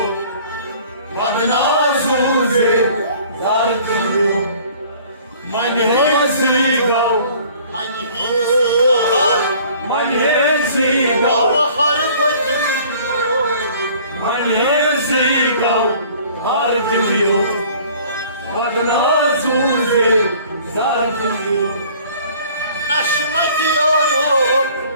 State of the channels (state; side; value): inverted; both; correlation -0.52